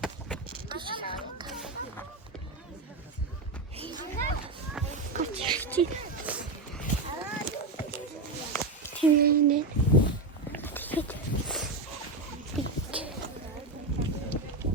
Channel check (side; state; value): left; quieter; 3.2 dB